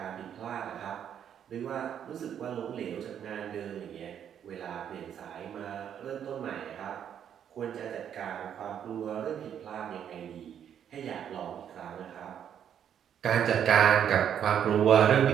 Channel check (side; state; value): left; quieter; 9.1 dB